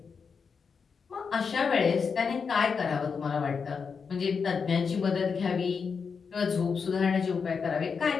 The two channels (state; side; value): quieter; right; 5.7 dB